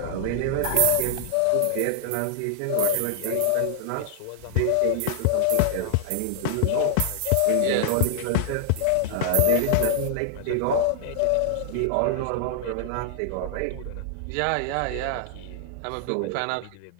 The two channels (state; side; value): different; both; correlation -0.01